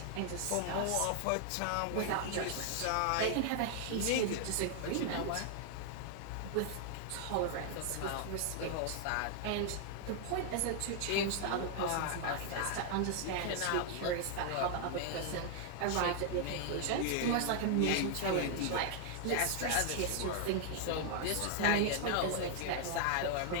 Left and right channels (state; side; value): different; both; correlation 0.00